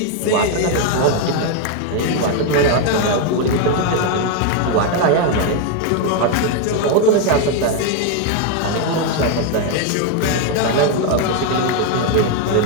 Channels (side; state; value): both; different; correlation 0.01